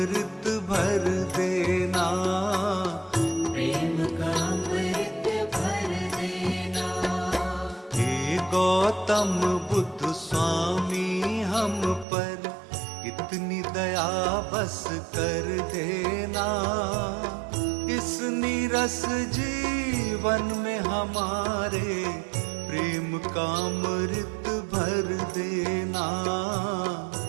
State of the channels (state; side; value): drops out; left; at 12.1 s